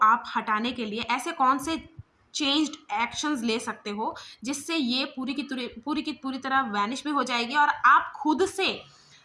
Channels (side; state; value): both; identical; correlation 1.00